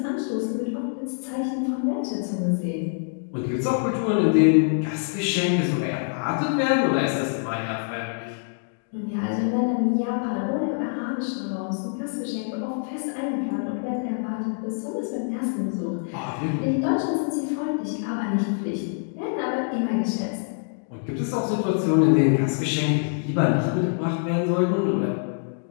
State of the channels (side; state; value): right; silent; digital silence